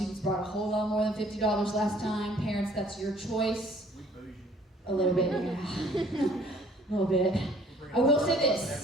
brought a whole lot more than $50 last time. Parents, that's your choice. A little bit, yeah. A little bit. I will say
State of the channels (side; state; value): both; normal; correlation 0.57